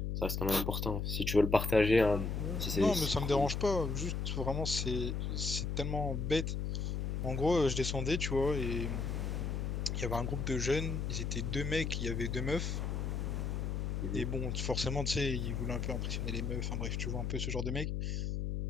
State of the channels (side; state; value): left; noise; hum, 1 dB below the sound